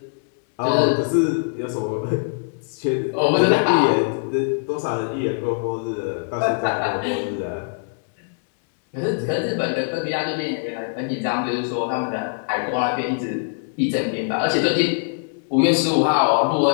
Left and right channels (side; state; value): right; silent; 64 dB below the other